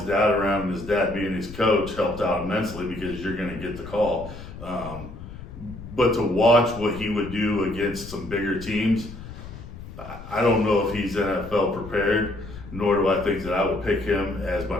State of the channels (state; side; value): noise; left; rumble, 13 dB below the sound